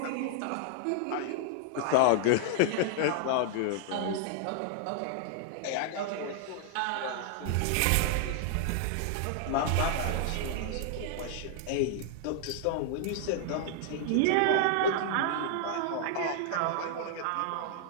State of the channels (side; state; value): both; different; correlation 0.00